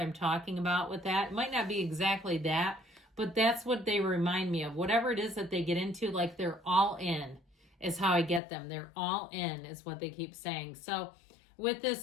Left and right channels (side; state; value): right; drops out; at 8.4 s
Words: talking about with that. It might not be exactly that, but that's what they remind me of. Whatever it is that they get into, like they're all in is how I get them. They're all in is what they keep saying. So with